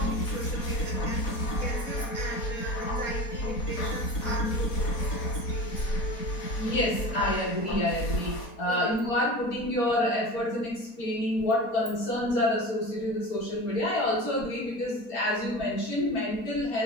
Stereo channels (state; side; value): late; right; 4.2 ms